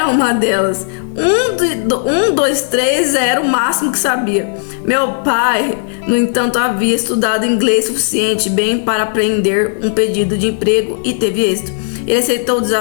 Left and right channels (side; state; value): right; silent; digital silence